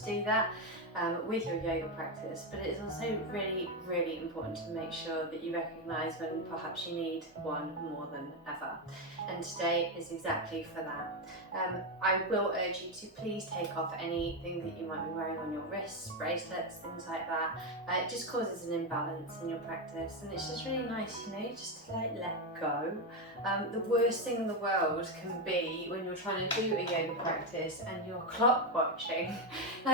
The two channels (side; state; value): both; normal; correlation 0.08